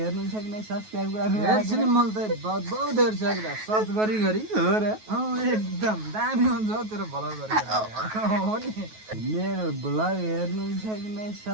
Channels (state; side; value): late; left; 9.3 ms